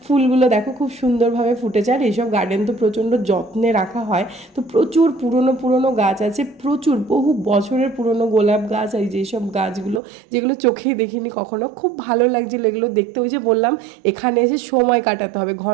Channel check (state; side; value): drops out; left; at 10.0 s